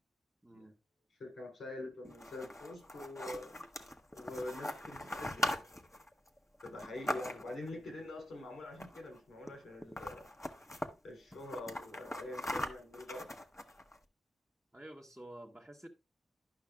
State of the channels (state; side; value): normal; both; correlation 0.85